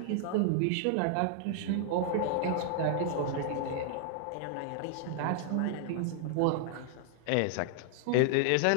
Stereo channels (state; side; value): different; both; correlation 0.00